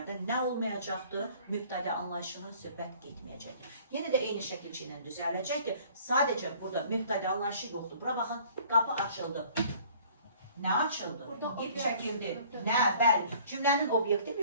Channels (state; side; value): inverted; both; correlation -0.53